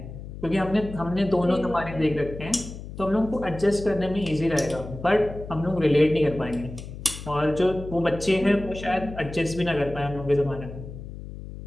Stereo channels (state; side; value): noise; left; hum, 11 dB below the sound